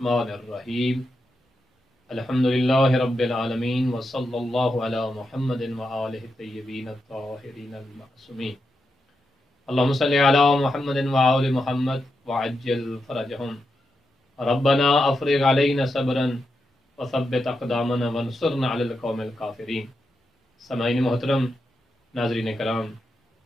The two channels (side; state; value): both; normal; correlation 0.86